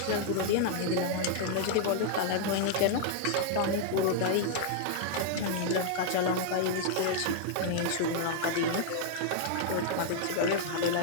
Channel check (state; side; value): different; both; correlation -0.01